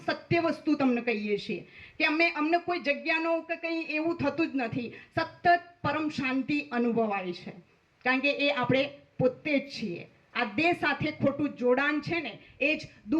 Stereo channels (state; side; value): identical; both; correlation 1.00